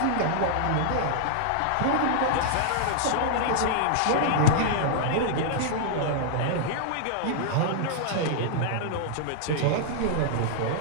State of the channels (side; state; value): both; different; correlation -0.01